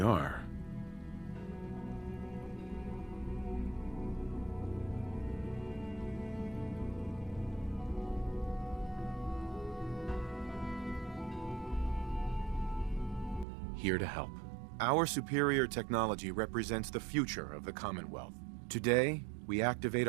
Here to help. Our superior technology represents the future of the Commonwealth. Today, we activate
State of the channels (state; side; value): drops out; left; at 13.5 s